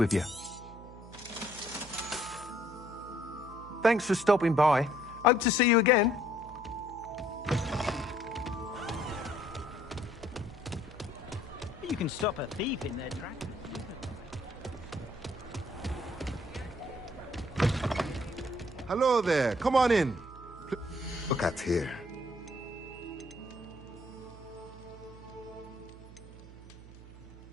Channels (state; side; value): noise; right; hum, 17 dB below the sound